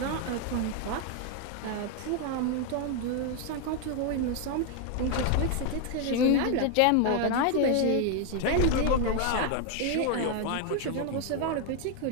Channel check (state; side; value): different; both; correlation 0.01